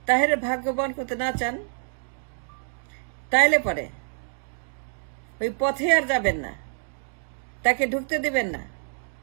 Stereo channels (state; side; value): silent; left; 60 dB below the other